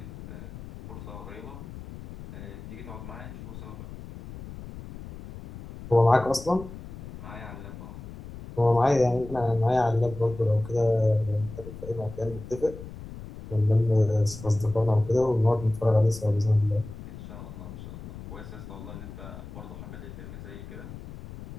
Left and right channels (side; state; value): left; noise; rumble, 13 dB below the sound